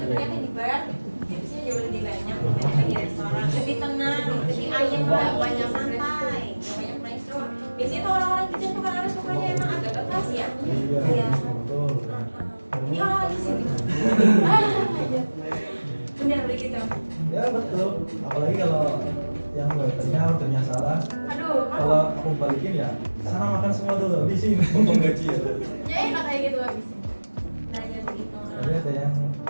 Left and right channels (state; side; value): inverted; both; correlation -1.00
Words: di bar tipsnya jauh lebih banyak dibandingkan di restoran lebih tenang, lebih ayem Nggak lagi, banyak santai nggak banyak restroom biasanya tuh orang-orang kitchen tuh kan sukanya emang agak keras ya Iya, betul. ini orang di sini benar begitu Ya betul. Apalagi kalau yang waiternya salah. aduh Kalau aku aku balikin ya sana makan semua dulu habisin potong gaji ya. Ya enak kayak gitu habisin. Belajar begitu. Tapi ada yang